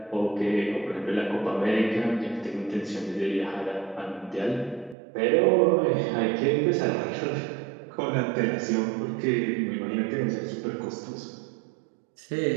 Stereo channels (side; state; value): left; drops out; at 5.0 s